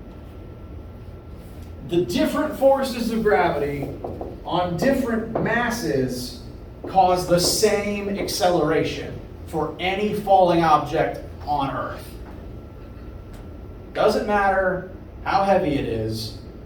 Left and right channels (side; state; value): both; identical; correlation 1.00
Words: The different forces of gravity on different masses cause the same acceleration for any falling object on Earth. Doesn't matter how heavy it is,